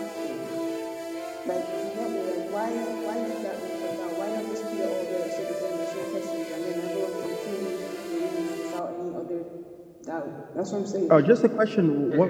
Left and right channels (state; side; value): identical; both; correlation 1.00